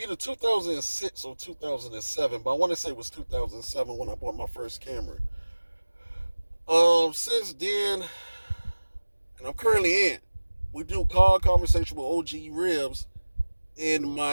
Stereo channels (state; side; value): inverted; both; correlation -1.00